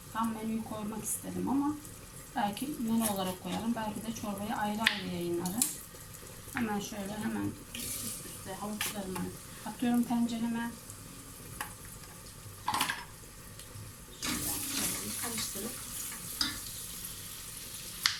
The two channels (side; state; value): both; identical; correlation 1.00